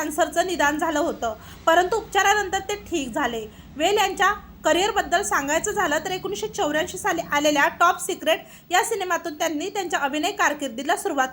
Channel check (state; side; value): identical; both; correlation 1.00